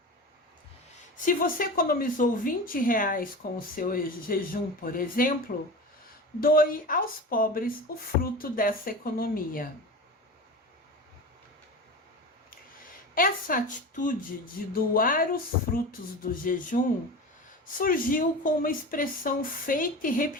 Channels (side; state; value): both; normal; correlation 0.30